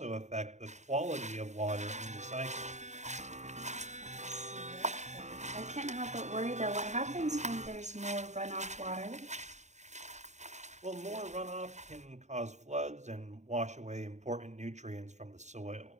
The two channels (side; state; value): left; late; 0.34 ms